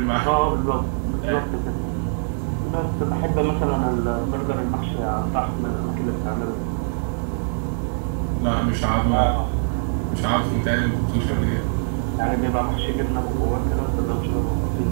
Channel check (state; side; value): silent; left; digital silence